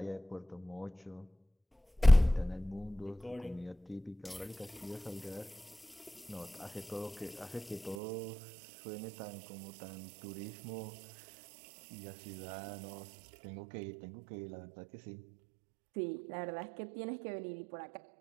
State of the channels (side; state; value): left; drops out; at 8.0 s